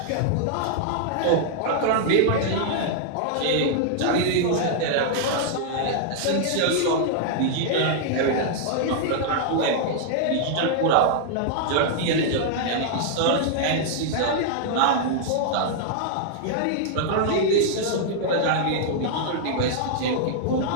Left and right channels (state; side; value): different; both; correlation -0.01